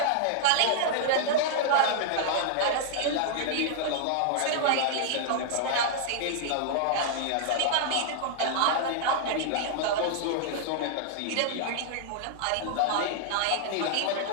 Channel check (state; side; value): different; both; correlation -0.01